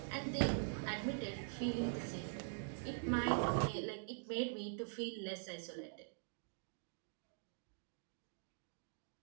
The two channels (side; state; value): left; silent; digital silence